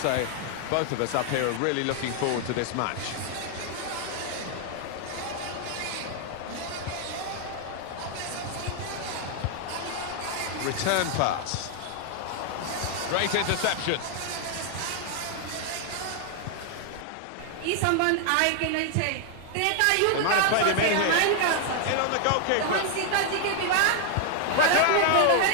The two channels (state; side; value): different; both; correlation 0.00